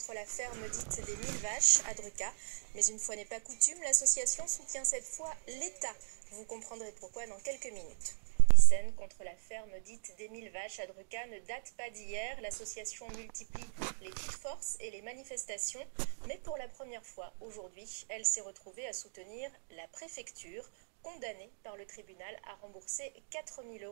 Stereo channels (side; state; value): left; silent; digital silence